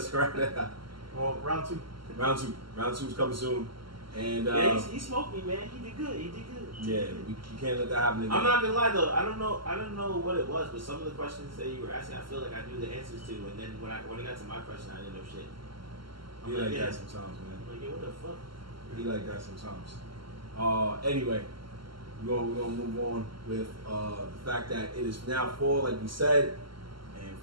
wrap that up. Well, round two. Round two is coming soon. And he smoked me, man. He did good. Yeah, you can't let that happen again. I'm not gonna lie though. I don't know what it was, but some of the questions that you were asking, I feel like I knew the answers to. And then when it got to my question, I didn't know shit. He like that sometimes, man. I'm like, yeah, what the fuck? He like that sometimes. Anyway, we're gonna move on with the fact that it is now fall, like we said, and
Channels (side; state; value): left; late; 0.74 ms